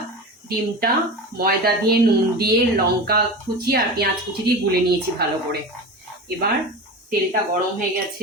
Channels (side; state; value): both; normal; correlation 0.28